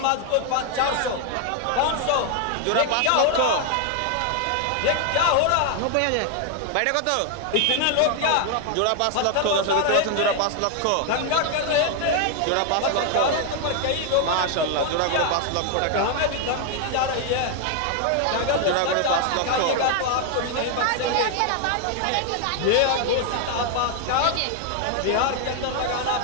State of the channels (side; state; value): both; different; correlation 0.01